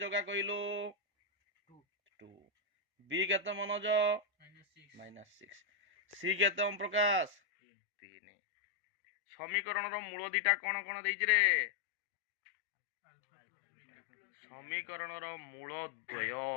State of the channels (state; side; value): drops out; right; at 7.4 s